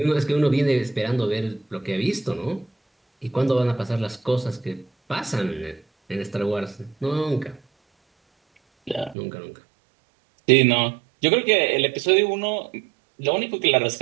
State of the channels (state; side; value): drops out; left; at 9.2 s